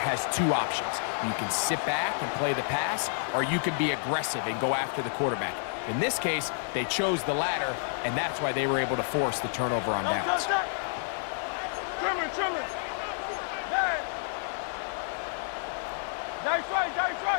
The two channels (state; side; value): silent; right; digital silence